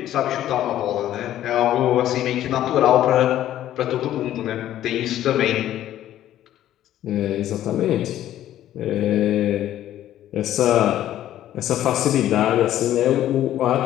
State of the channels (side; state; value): right; quieter; 12.5 dB